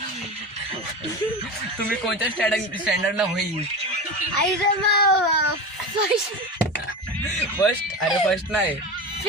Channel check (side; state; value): both; normal; correlation 0.25